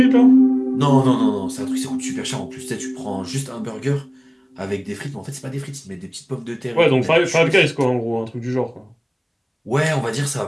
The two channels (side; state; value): both; identical; correlation 1.00